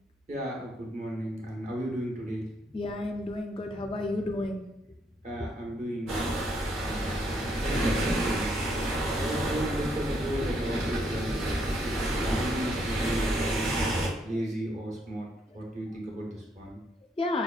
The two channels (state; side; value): normal; both; correlation 0.73